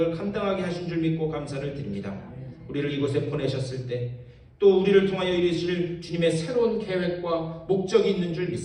감당하게 하신 줄 믿고 감사를 드립니다. 우리를 이곳에 보내셨을 때 또 우리를 통하여 이루실 주님의 새로운 계획과 목적이 있는 줄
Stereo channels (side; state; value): both; identical; correlation 1.00